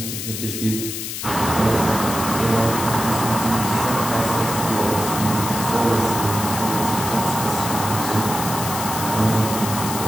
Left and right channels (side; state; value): left; noise; hiss, 6 dB below the sound